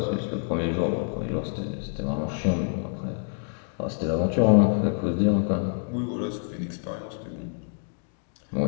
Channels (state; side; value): silent; right; 60 dB below the other